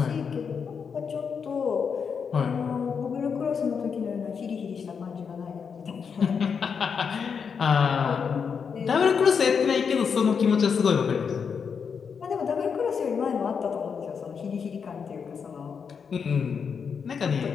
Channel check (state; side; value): quieter; right; 6.3 dB